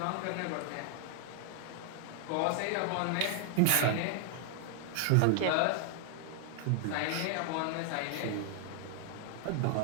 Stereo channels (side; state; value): both; different; correlation 0.00